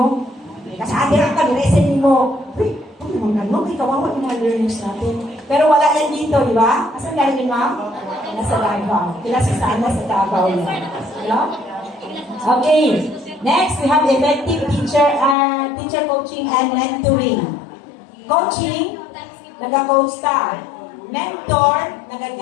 Kasi adirang ka, niresin mo. Uy, ano, may kawawa yung mga learners natin. Pero wala yan dito, di ba? Asan galing yun, ma'am? Nasa Davao. Kilasa saan? Nasa Davao yan. Hello? Okay. Next, we have effective teacher coaching and mentoring. Coaching, nag-coach ka. Mentor,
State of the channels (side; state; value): right; drops out; at 15.4 s